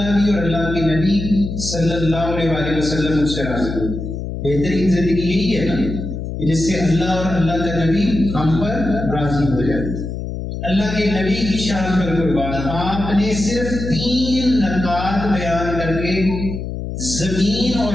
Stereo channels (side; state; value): left; noise; hum, 6 dB below the sound